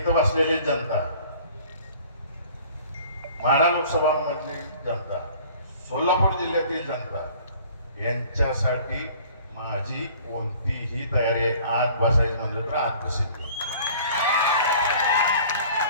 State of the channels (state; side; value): inverted; both; correlation -0.50